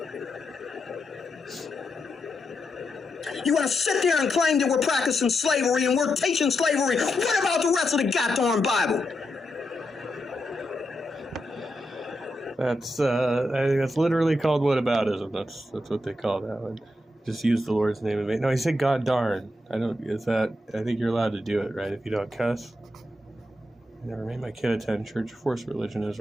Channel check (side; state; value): both; normal; correlation 0.85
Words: You want to sit there and claim that we're practicing slavery and we're teaching slavery. What about the rest of the goddamn Bible? That's I think that's literally called whataboutism. That's what they call that one. Just use the Lord's name in vain. No, he said God darn. I think you're allowed to do it, right? If you don't cuss. I never made my kid attend church. Forced religion is